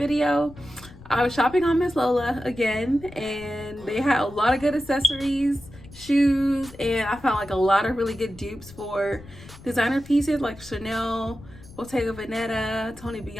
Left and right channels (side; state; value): left; noise; rumble, 19 dB below the sound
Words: I was shopping on Miss Lola again, and they had a lot of good accessories, shoes, and I found like a lot of really good dupes for designer pieces like Chanel, Bottega Veneta, Tony